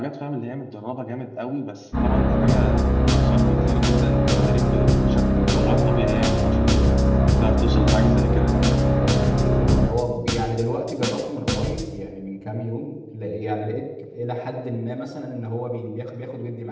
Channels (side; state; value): both; identical; correlation 1.00